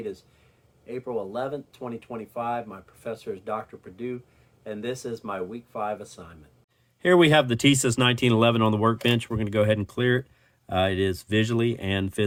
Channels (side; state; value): both; identical; correlation 1.00